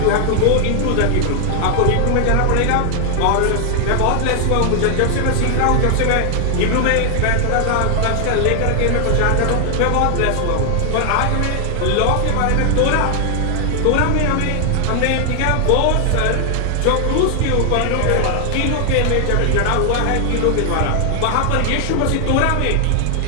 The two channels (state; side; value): different; both; correlation 0.00